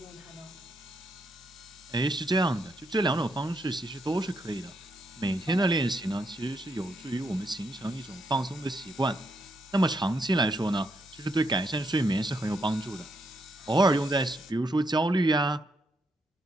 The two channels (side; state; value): both; normal; correlation 0.78